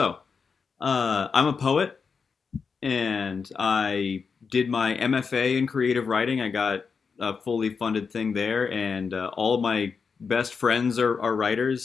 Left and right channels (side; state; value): right; quieter; 5.5 dB